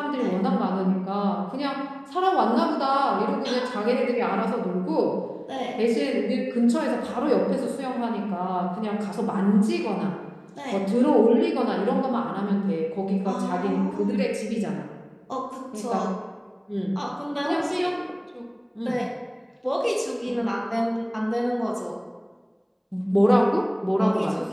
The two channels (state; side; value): identical; both; correlation 1.00